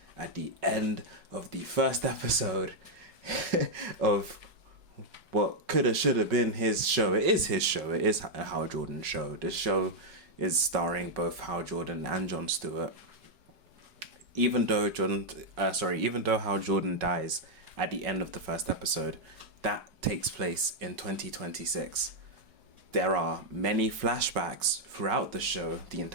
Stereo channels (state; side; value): late; left; 5.3 ms